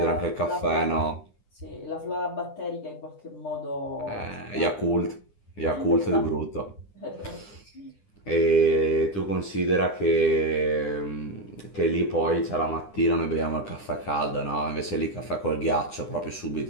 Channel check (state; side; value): late; right; 9.9 ms